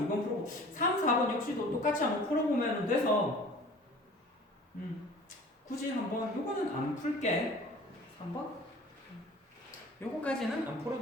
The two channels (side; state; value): both; normal; correlation 0.46